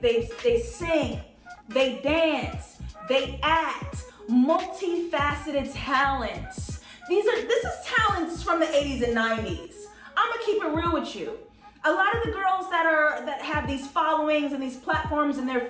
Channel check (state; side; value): identical; both; correlation 1.00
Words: sing, they dance, they act, multifaceted talents. This is talents from the 80s and 90s. I'm gonna keep it real with you. A lot of the girls that have these followings and these platforms and they're